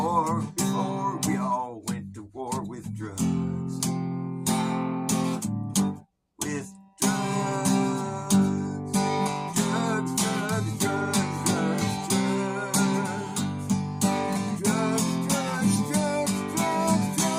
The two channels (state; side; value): identical; both; correlation 1.00